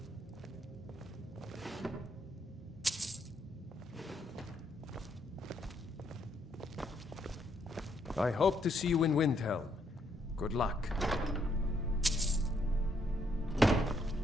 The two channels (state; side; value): normal; both; correlation 0.73